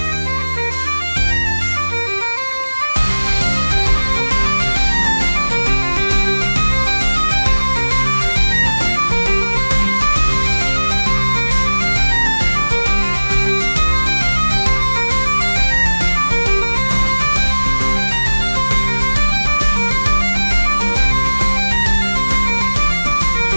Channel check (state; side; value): inverted; both; correlation -1.00